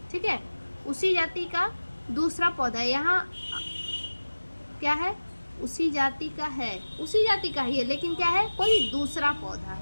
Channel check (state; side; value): inverted; both; correlation -1.00